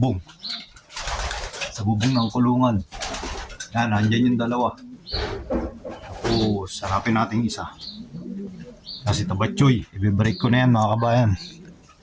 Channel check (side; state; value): both; identical; correlation 1.00